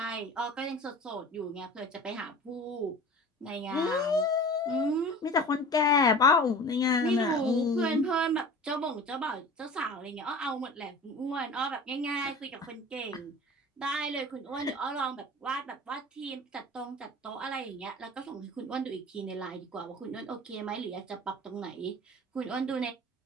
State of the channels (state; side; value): normal; both; correlation 0.39